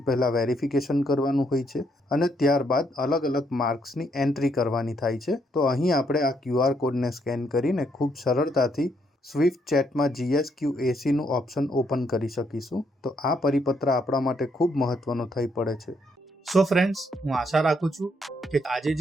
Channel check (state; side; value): normal; both; correlation 0.74